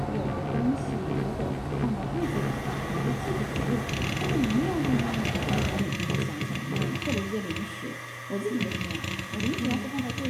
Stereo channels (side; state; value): both; identical; correlation 1.00